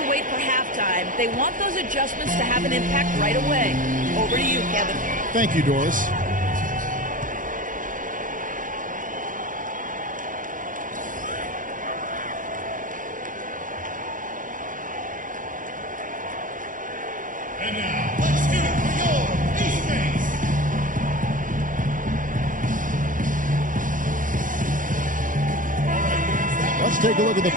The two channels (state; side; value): late; left; 0.39 ms